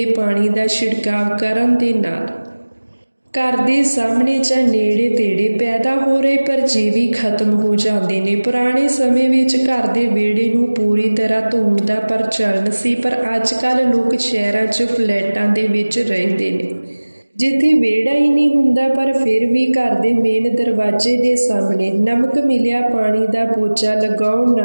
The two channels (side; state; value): both; inverted; correlation -1.00